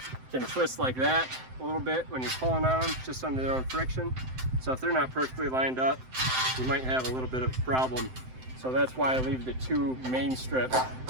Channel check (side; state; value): left; late; 7.8 ms